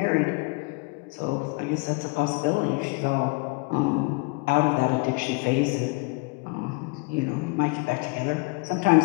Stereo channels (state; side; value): quieter; right; 29.9 dB